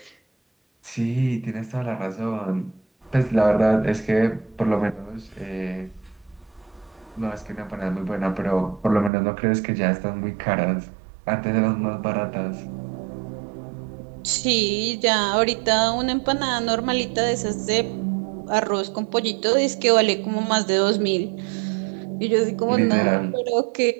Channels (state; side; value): drops out; left; at 9.1 s